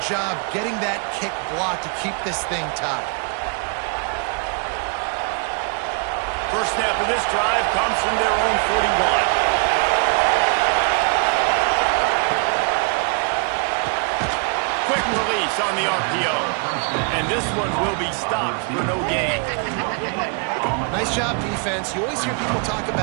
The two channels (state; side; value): quieter; left; 38.0 dB